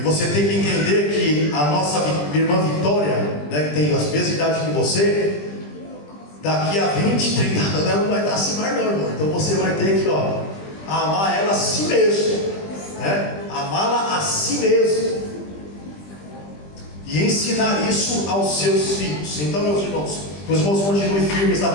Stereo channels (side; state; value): right; late; 20 ms